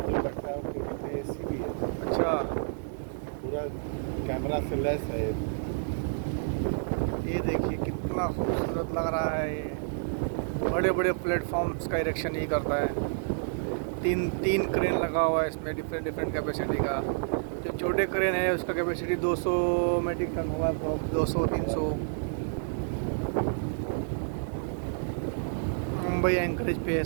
अच्छा, पूरा कैमरा से लेस है। ये देखिए कितना खूबसूरत लग रहा है। ये बड़े बड़े प्लेटफॉर्म्स का इरेक्शन ही करता है। तीन क्रेन लगा हुआ है इसमें, डिफरेंट डिफरेंट कैपेसिटी का। जो छोटे क्रेन है उसका कैपेसिटी 200 मेट्रिक टन होगा, 200-300। मुंबई एंकरेज पे है,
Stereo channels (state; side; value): silent; left; digital silence